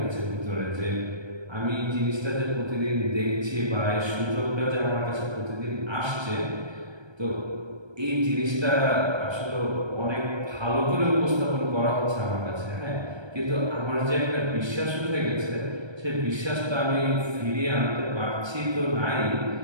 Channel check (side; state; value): left; late; 1.3 ms